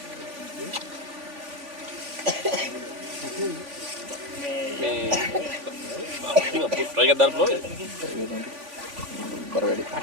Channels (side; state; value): left; late; 3.5 ms